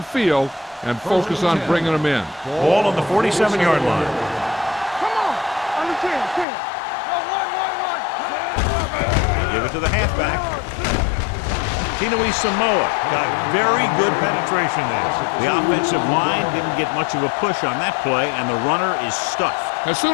field and focus on bringing them in. Ball on the 47-yard line. Come on. Under 10. No, one. They give it to the halfback. Tinui Samoa got very good penetration there. The offensive line didn't get much of a push on that play, and the runner is stuffed. As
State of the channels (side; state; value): right; drops out; at 6.5 s